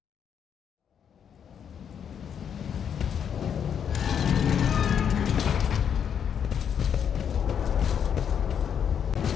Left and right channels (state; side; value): quieter; right; 8.1 dB